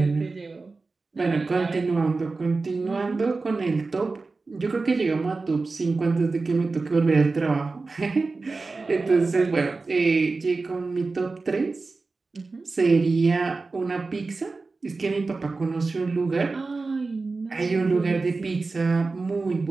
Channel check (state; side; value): quieter; left; 3.8 dB